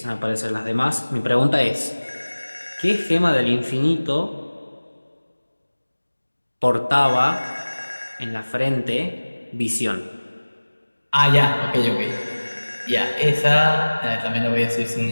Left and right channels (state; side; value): inverted; both; correlation -1.00